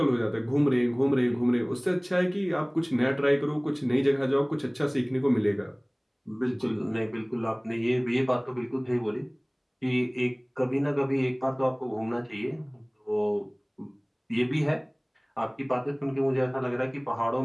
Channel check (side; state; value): both; identical; correlation 1.00